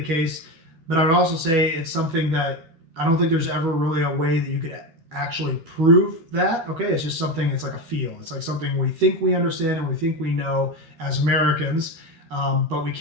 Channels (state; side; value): late; left; 12 ms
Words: case, but I would also say it's something that I don't think there's ever really a way that you could actually prove that. Okay, it's just something, it's like a feel. It's like something we think we understand and we think we know as Americans. But we